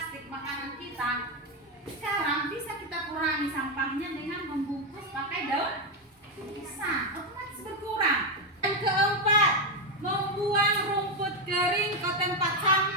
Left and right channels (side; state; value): both; normal; correlation 0.06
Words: makanan kita, sekarang bisa kita kurangi sampahnya dengan membungkus pakai daun pisang, otomatis berkurang. Yang keempat, membuang rumput kering ke tempat